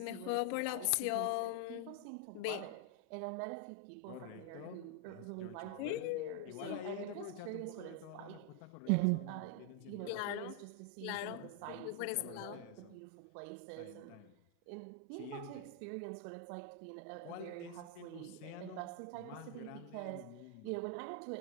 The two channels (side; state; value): both; different; correlation 0.00